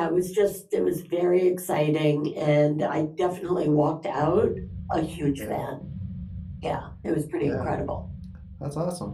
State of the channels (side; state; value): both; identical; correlation 1.00